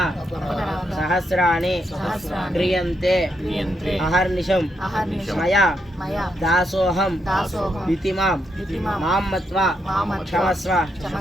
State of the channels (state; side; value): normal; both; correlation 0.80